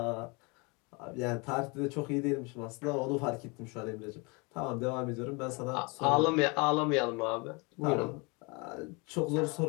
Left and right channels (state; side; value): quieter; right; 29.3 dB